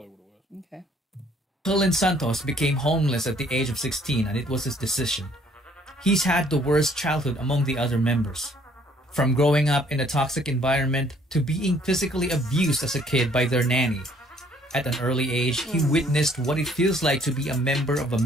what it was. Okay. Cullen Santos became homeless at the age of 16, and it was his decision. He's had the worst childhood among the other members. From growing up in a toxic environment to being physically abused as a kid by their nanny. At an early age, he witnessed what it feels like to be a member of a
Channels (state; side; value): normal; both; correlation 0.61